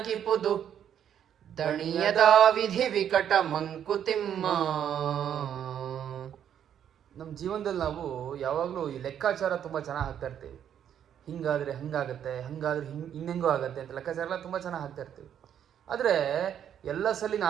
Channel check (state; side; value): quieter; left; 9.4 dB